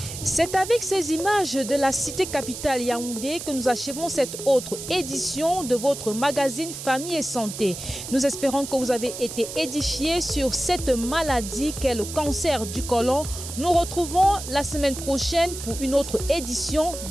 C'est avec ces images de la cité capitale Yaoundé que nous achevons cette autre édition de votre magazine Famille et Santé. Nous espérons que vous avez été édifiés sur cette maladie qu'est le cancer du côlon. Nous retrouvons la semaine prochaine pour une autre édition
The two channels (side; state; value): right; noise; hiss, 9 dB below the sound